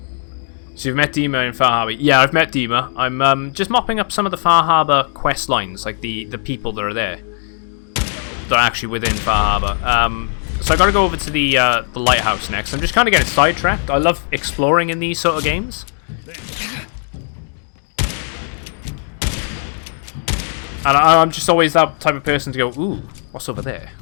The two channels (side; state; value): right; silent; digital silence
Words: So you've met Dima in Far Harbor. Yeah, I've met Dima. I'm just mopping up some of the Far Harbor quest lines, like the people that are there. That are actually within Far Harbor. So I gotta go over to the lighthouse next. I'm just kind of getting sidetracked. I love exploring in these sort of games. And I'm just always that type of person to go, ooh, what's over there?